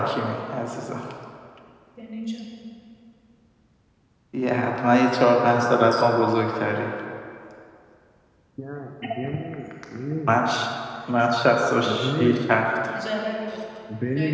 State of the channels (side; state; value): both; identical; correlation 1.00